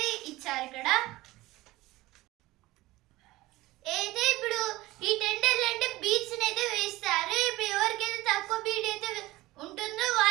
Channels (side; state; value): left; quieter; 18.6 dB